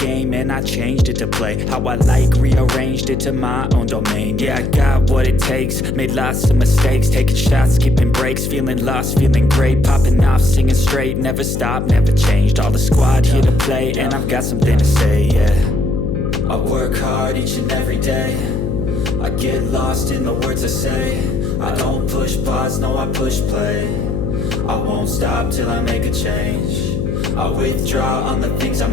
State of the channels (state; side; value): noise; left; hum, 1 dB below the sound